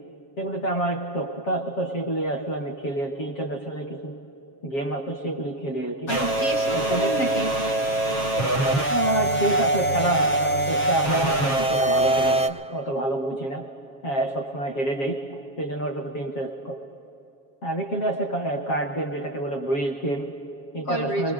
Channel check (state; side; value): late; right; 7.3 ms